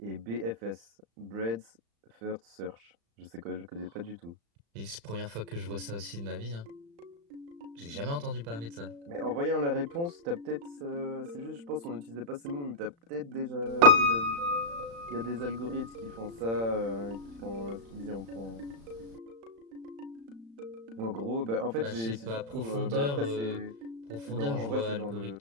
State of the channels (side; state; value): left; late; 35 ms